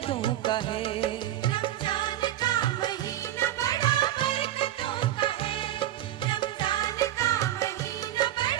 का है। रमजान का महीना बड़ा बरकतों का है, रमजान का महीना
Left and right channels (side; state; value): left; quieter; 12.8 dB